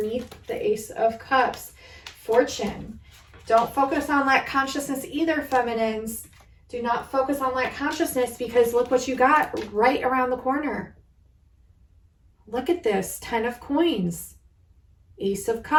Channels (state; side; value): identical; both; correlation 1.00